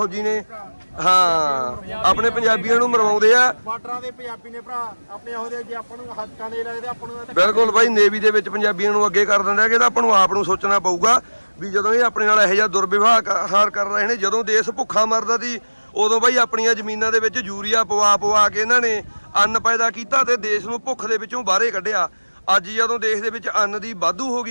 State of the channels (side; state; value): both; inverted; correlation -1.00